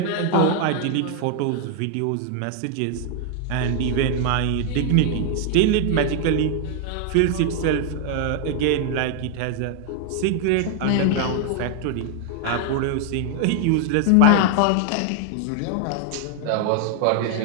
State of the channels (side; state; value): both; different; correlation 0.00